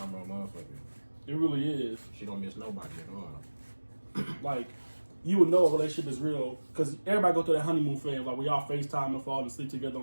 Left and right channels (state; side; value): inverted; both; correlation -1.00